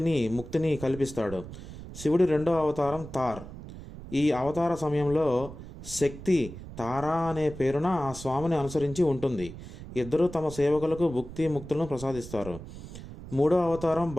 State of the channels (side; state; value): right; noise; rumble, 13 dB below the sound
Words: ముక్తిని కల్పిస్తాడు. శివుడి రెండో అవతారం తార్. ఈ అవతార సమయంలో శక్తి తారా అనే పేరున ఆ స్వామిని అనుసరించి ఉంటుంది. ఇద్దరూ తమ సేవకులకు ముక్తులను ప్రసాదిస్తారు. మూడో అవతారం